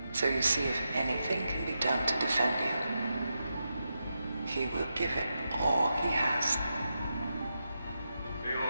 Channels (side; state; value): both; inverted; correlation -0.87